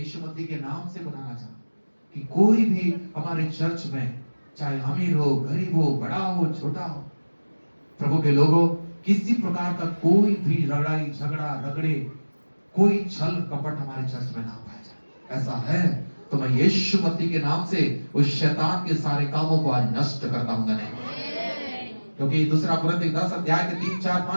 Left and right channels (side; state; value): both; inverted; correlation -1.00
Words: मसीह के नाम से बताना चाहता हूं कि कोई भी हमारे चर्च में, चाहे अमीर हो, गरीब हो, बड़ा हो, छोटा हो, प्रभु के लोगों, किसी प्रकार का कोई भी लड़ाई झगड़ा रगड़े, कोई छल कपट हमारे चर्च में ना पाया जाए। ऐसा है तो मैं यीशु मसीह के नाम से उस शैतान के सारे कामों को आज नष्ट करता हूं। क्योंकि 2 कुरिन्थियों 10 अध्याय के 3, 4,